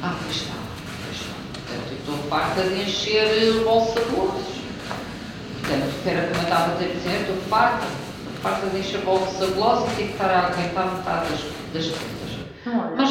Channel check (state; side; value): identical; both; correlation 1.00